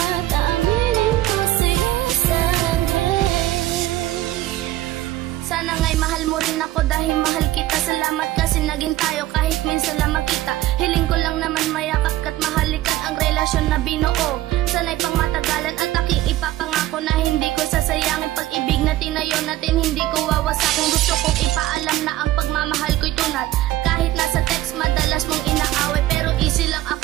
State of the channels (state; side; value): quieter; left; 15.1 dB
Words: tawilin ko sa'yo sa akin. Sana nga'y mahal mo rin ako dahil mahal kita. Salamat kasi naging tayo kahit minsan lang magkita. Hiling ko lang naman mayakap ka't mahalikan ang relasyon na binuo. Sana'y pang matagalan at aking ipapangako na hindi ko sasayangin pag-ibig na tinayo natin, hindi ko wawasakin. Gusto kong ipaalam na ang pagmamahal ko'y tunad. Kahit nasa text madalas mong inaaway, pero easy lang